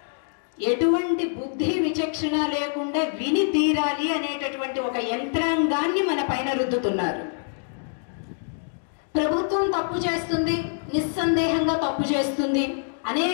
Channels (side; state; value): right; silent; digital silence